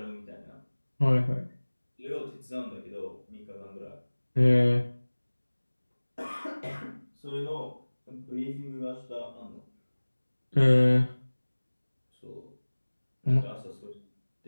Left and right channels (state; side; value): inverted; both; correlation -1.00